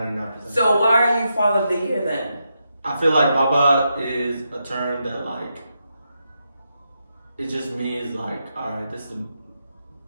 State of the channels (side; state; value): both; inverted; correlation -0.84